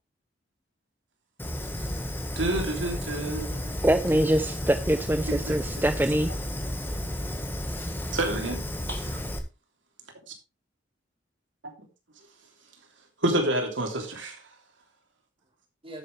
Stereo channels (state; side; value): normal; both; correlation 0.68